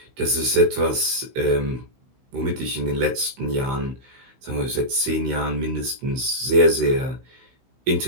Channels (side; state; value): left; late; 16 ms